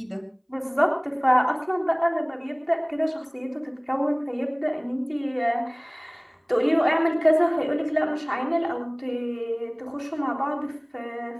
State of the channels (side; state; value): both; identical; correlation 1.00